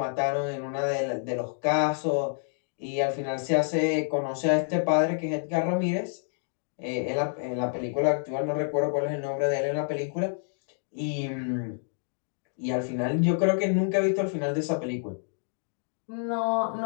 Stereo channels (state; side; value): silent; right; digital silence